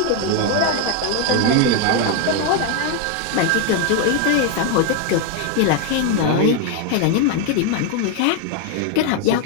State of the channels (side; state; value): both; different; correlation 0.01